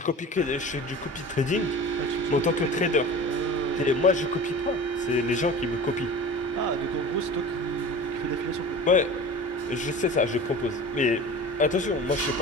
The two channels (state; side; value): normal; both; correlation 0.37